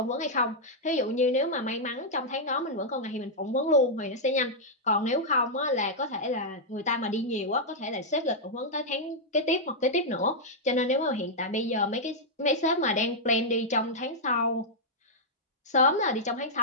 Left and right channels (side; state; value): both; normal; correlation -0.06